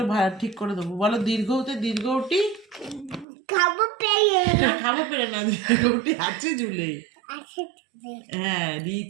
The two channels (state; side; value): drops out; left; at 3.2 s